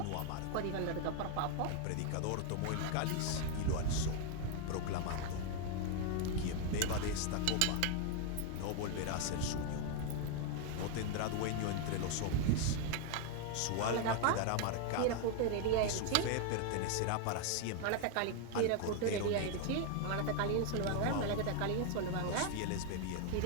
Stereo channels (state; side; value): different; both; correlation 0.00